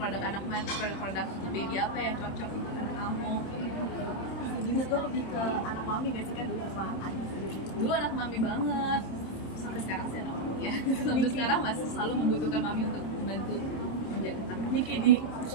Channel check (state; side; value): late; right; 26 ms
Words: anak mana, produk-produk baby apa yang cocok untuk anak kamu. Jadi itu lebih ke anak mami nggak sih kan dulu sama adik sendiri? Dulu anak mami banget, sampai sekarang sih anak mami ya. Sampai sekarang masih selalu membutuhkan mami untuk membantu menjaga anak. Niki,